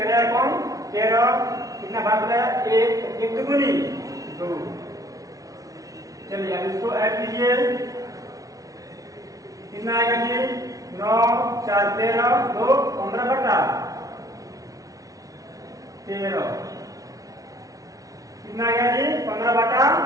एकम 13 कितना भाग बना 1 1 दुगुनी 2। चलिए अब इसको ऐड कीजिए, कितना आएगा जी 9 4 13 2 15/13 कितना आएगा जी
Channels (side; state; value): left; late; 0.17 ms